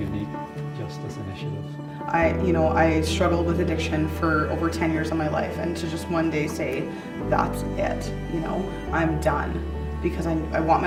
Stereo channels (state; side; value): identical; both; correlation 1.00